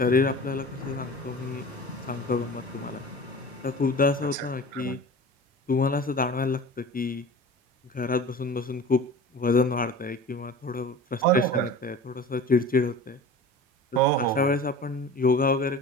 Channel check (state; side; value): normal; both; correlation 0.37